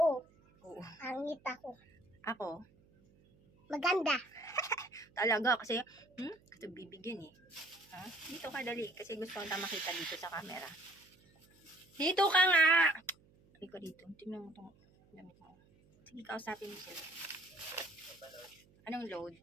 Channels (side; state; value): right; noise; hum, 29 dB below the sound